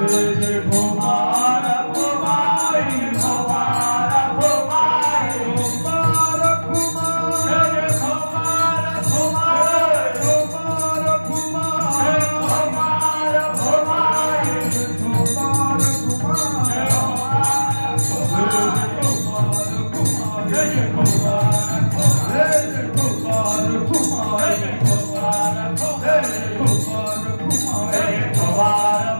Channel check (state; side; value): inverted; both; correlation -1.00